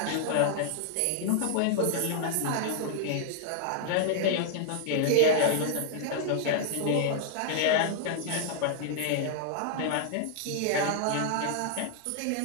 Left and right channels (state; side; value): different; both; correlation 0.00